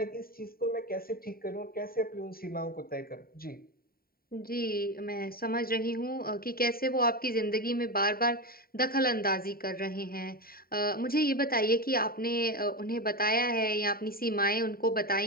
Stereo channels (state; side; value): late; right; 0.43 ms